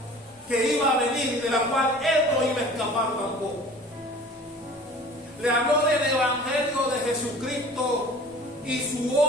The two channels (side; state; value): both; normal; correlation 0.44